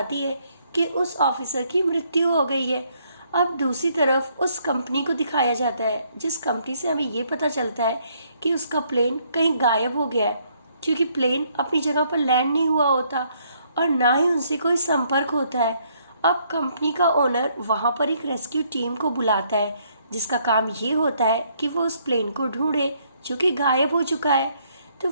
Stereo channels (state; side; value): inverted; both; correlation -0.69